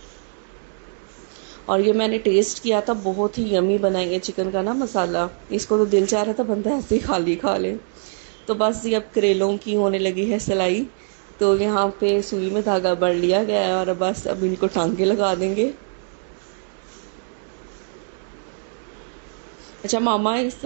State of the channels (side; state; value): left; silent; 64 dB below the other